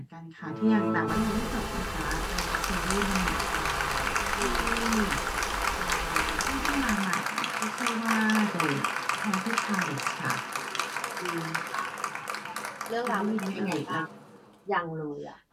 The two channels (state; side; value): identical; both; correlation 1.00